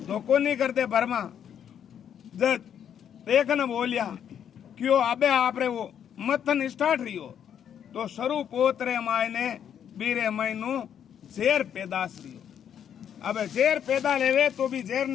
धोखो नहीं करते भरमा। जब देखन बोलिया क्यों अबे आप रे वो मथन स्टार्ट रही हो तो शरू पोतरे माय ने बीरे महीनू जेर पैदाश रही हो। अबे जेर पैदा लेवे तो भी जेर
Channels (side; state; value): right; quieter; 8.9 dB